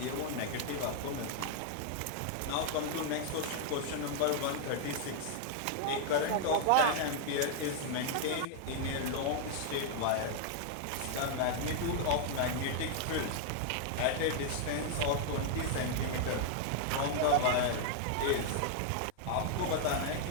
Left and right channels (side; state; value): both; different; correlation 0.00